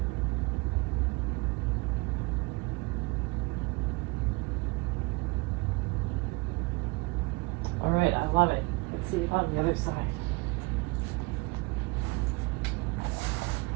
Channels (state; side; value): quieter; left; 25.0 dB